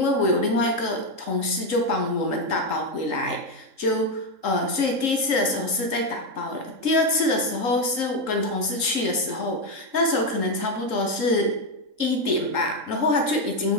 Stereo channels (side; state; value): left; late; 3.8 ms